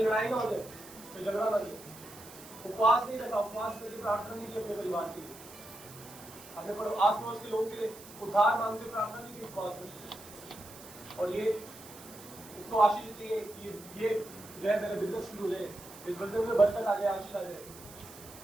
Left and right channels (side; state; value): right; noise; hiss, 17 dB below the sound